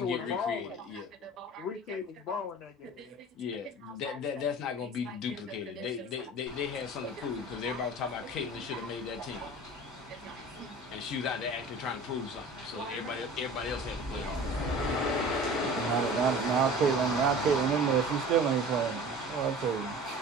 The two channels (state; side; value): normal; both; correlation 0.40